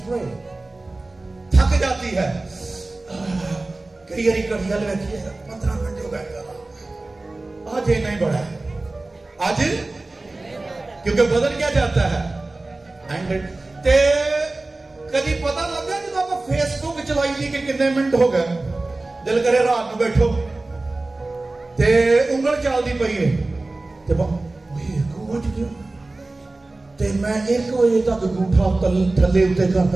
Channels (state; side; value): quieter; left; 3.1 dB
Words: प्रे, थक जाती है। कई बारी घड़िया बैठी है 15 घंटे हो गए, आज इतना ही बड़ा है आज, क्योंकि बदन क्या चाहता है? ते कभी पता लगा जब आप फेसबुक चलाई थी कि कितने मिनट हो गए, दिल करे रात में बैठो ते उंगल चलती पई है, ते मैं 1 बजे तक अंगूठा थले उत्ते